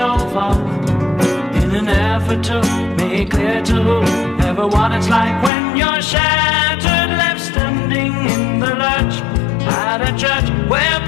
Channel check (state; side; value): drops out; right; at 5.5 s